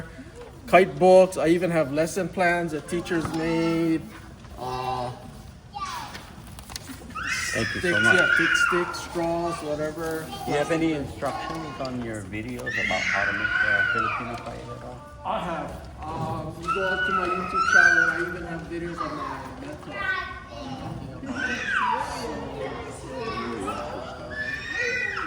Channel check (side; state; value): both; identical; correlation 1.00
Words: kite books. I even have lesson plans that teachers made. Thank you Sticks, so much. yeah, big sticks, straws, whatever. Do you have any instructions on your videos about how to make a Filipino kite at all? I have. You go up to my YouTube channel. I even have videos on my mentor.